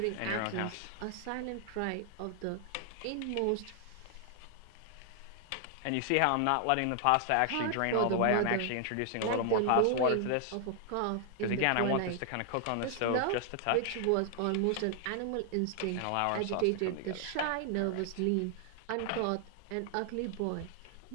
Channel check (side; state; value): both; different; correlation 0.00